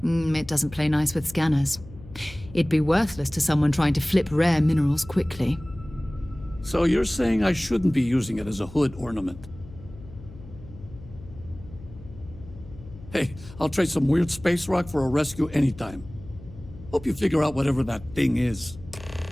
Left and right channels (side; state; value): left; noise; hum, 17 dB below the sound